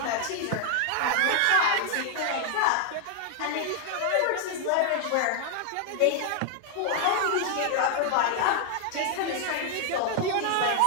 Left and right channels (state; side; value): different; both; correlation 0.00